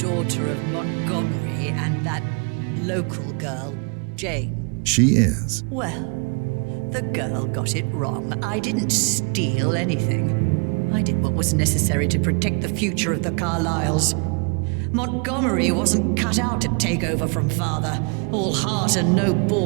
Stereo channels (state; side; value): quieter; left; 34.7 dB